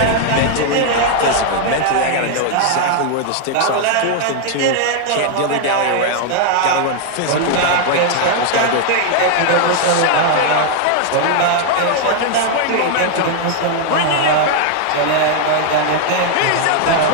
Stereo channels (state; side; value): different; both; correlation 0.00